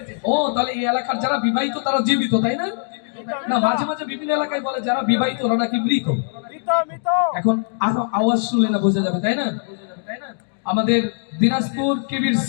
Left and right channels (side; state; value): right; silent; 60 dB below the other